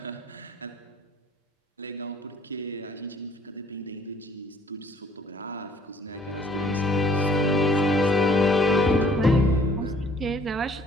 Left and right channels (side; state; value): both; normal; correlation 0.59